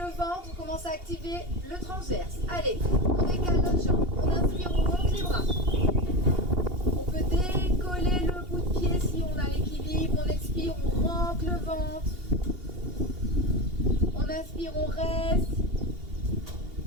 ventre, on commence à activer le transverse. Allez, on décale notre jambe. On inspire, on monte les bras. On peut décoller le bout de pied si on a l'équilibre. On expire, on rentre le ventre. On inspire, on reste.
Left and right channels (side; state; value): left; late; 2.8 ms